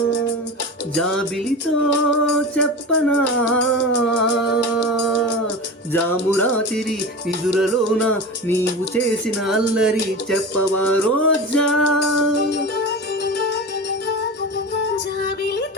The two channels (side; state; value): both; normal; correlation 0.28